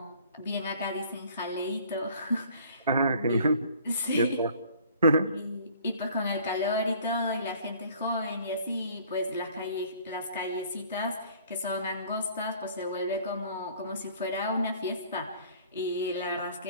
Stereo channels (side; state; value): both; inverted; correlation -0.53